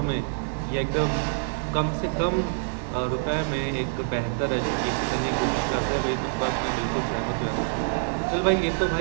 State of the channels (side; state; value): left; silent; digital silence